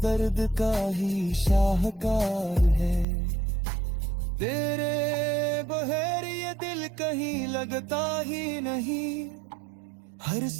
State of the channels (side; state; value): left; drops out; at 3.1 s